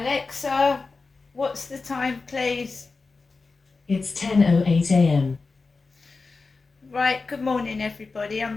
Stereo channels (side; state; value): right; quieter; 4.1 dB